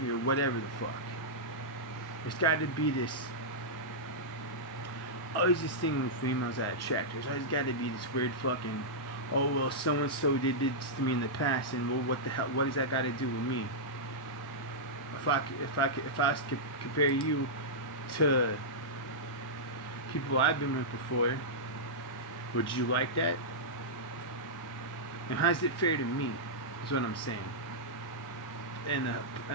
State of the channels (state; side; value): normal; both; correlation -0.11